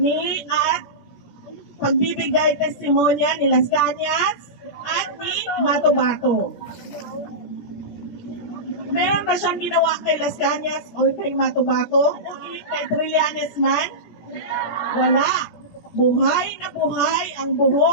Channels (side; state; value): right; late; 17 ms